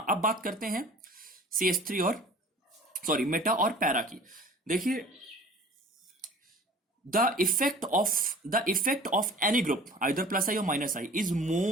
अब बात करते हैं CH3 और मेटा और पैरा की. देखिए, the effect of any group, either plus I or minus I, is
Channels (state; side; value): normal; both; correlation 0.46